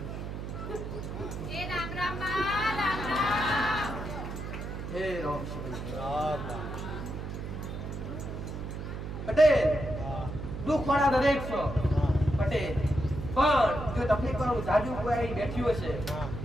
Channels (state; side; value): noise; right; hum, 7 dB below the sound